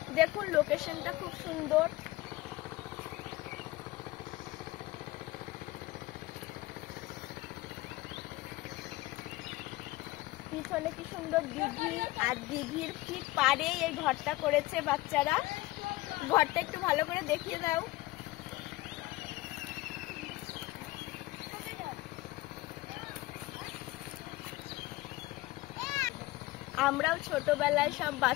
দেখুন লোকেশনটা খুব সুন্দর। পিছনে কি সুন্দর দিঘি, আর দিঘির ঠিক পাড়েই এই ঘরটা করেছে বাচ্চারা। ঘরটা একটু ভালো করে দেখিয়ে দাও। আমরাও ছোটবেলায় সব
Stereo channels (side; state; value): right; quieter; 19.3 dB